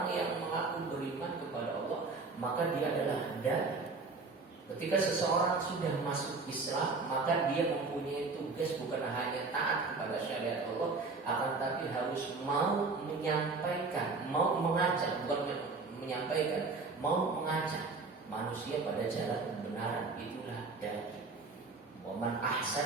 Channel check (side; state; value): left; quieter; 4.0 dB